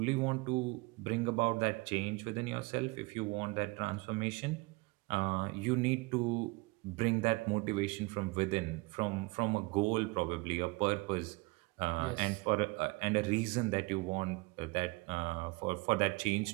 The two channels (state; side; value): quieter; left; 25.3 dB